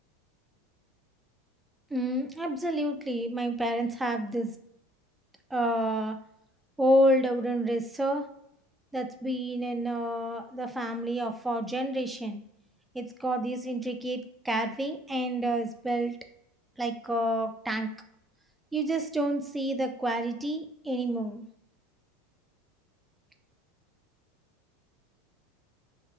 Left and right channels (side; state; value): both; normal; correlation 0.65